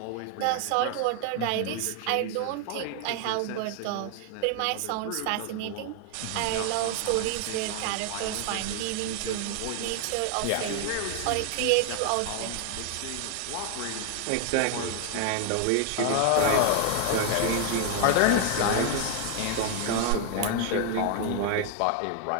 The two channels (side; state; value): both; different; correlation 0.00